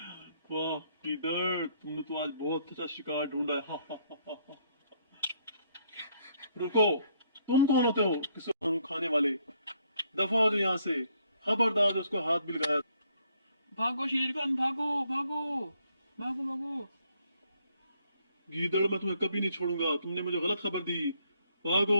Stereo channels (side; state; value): both; inverted; correlation -0.69